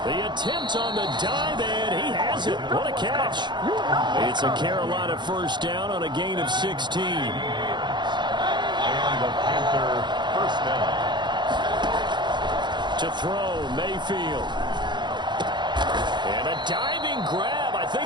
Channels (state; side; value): late; left; 0.22 ms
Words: attempt on the dive, and he has it. What a catch. It's a Carolina 1st down on a gain of 16. And the Panther 1st down. To throw, Mayfield. And a diving grab. I